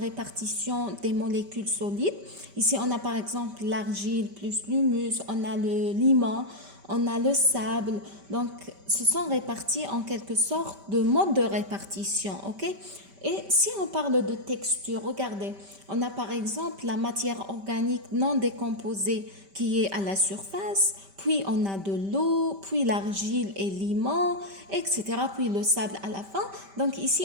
répartition des molécules solides. Ici, on a par exemple l'argile plus l'humus, on a le limon, on a le sable. Donc, ce sont répartis en quelque sorte de mode de répartition, ok? Et si on parle de texture, regardez, on a par exemple la matière organique non décomposée qui est à la surface, puis on a de l'eau, puis l'argile et limon, etc., puis le sable à la fin. Donc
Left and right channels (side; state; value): left; late; 5.1 ms